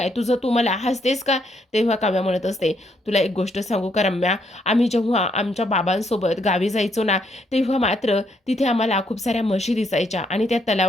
तुझं? तू मला हसतेस का?" तेव्हा काव्या म्हणत असते, "तुला एक गोष्ट सांगू का रम्या? आम्ही जेव्हा आमच्या बाबांसोबत गावी जायचो ना, तेव्हा मात्र तिथे आम्हाला खूप साऱ्या म्हशी दिसायच्या आणि त्या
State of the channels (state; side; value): normal; both; correlation 0.74